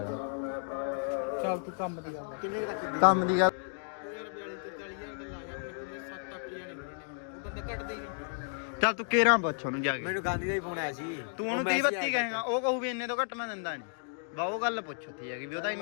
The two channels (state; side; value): silent; right; digital silence